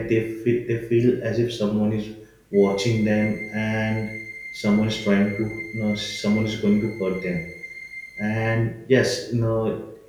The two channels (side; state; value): both; identical; correlation 1.00